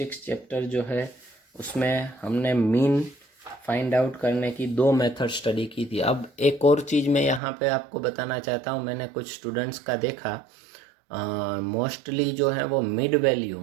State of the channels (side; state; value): left; drops out; at 7.4 s